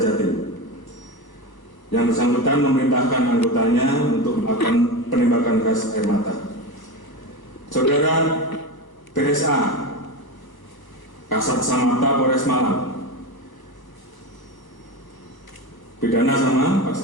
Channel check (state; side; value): late; right; 1.1 ms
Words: Jatim, yang bersangkutan memerintahkan anggotanya untuk melakukan penembakan gas air mata. Saudara BSA, Kasat Samapta Polres Malang, pidana sama